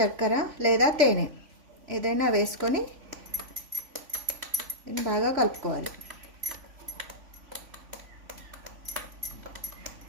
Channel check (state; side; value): late; left; 3.5 ms